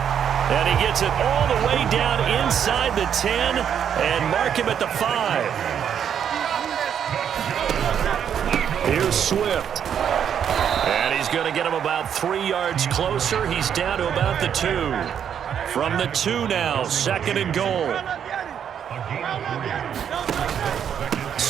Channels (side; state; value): left; quieter; 8.5 dB